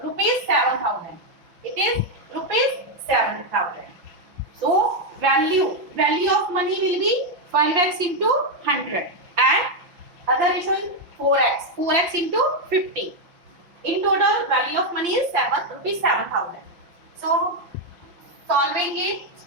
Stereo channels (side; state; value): left; late; 5.8 ms